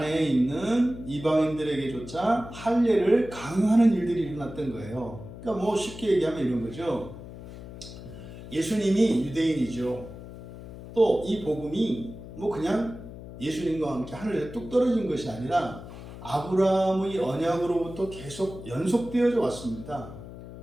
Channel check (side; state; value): left; noise; hum, 13 dB below the sound